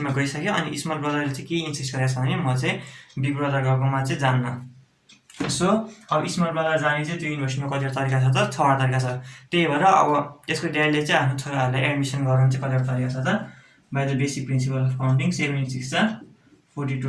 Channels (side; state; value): both; identical; correlation 1.00